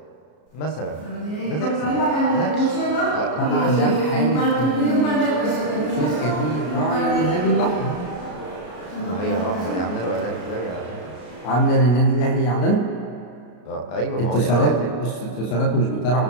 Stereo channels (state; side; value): late; right; 33 ms